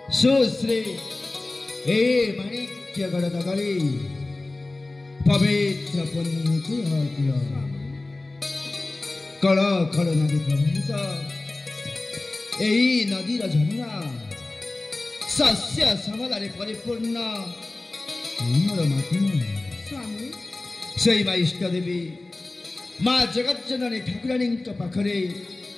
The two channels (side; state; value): right; quieter; 3.1 dB